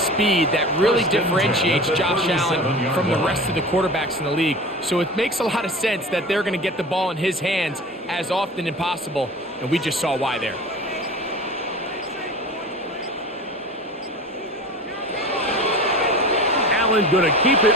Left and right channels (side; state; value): both; normal; correlation 0.36